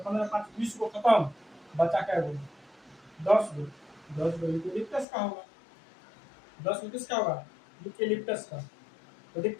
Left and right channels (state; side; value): drops out; right; at 5.1 s